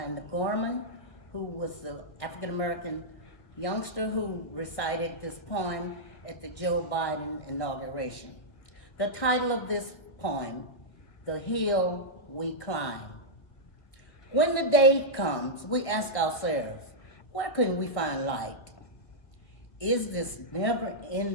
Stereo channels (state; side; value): late; right; 1.8 ms